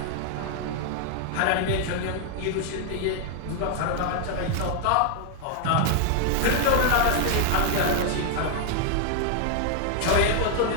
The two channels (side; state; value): both; different; correlation 0.00